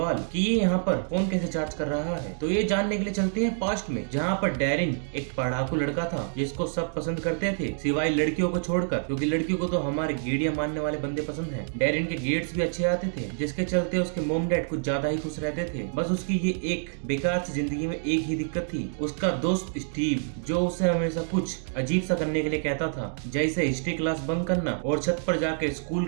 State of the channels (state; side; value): silent; left; digital silence